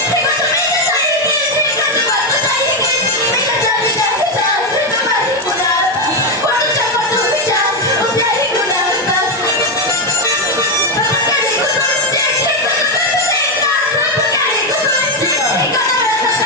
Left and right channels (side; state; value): both; normal; correlation 0.07